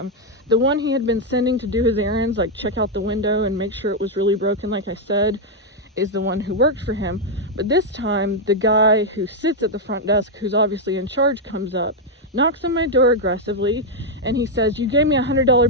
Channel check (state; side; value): normal; both; correlation -0.01